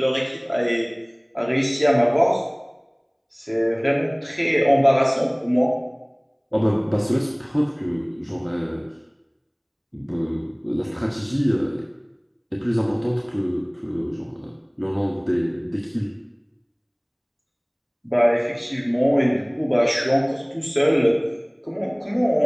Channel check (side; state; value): both; identical; correlation 1.00